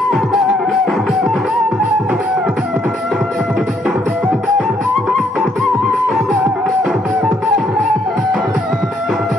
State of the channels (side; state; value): both; normal; correlation 0.70